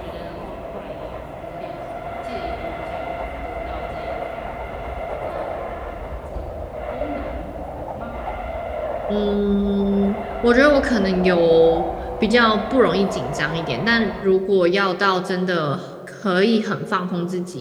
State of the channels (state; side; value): identical; both; correlation 1.00